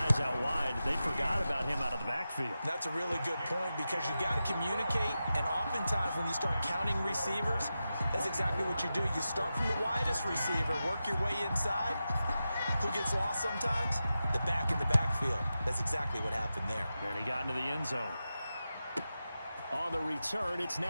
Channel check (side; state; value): both; inverted; correlation -0.92